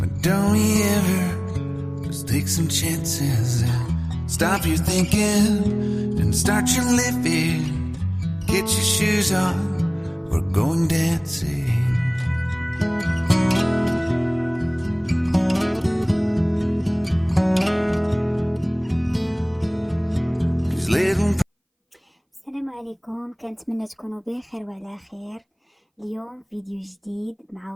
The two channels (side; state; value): both; identical; correlation 1.00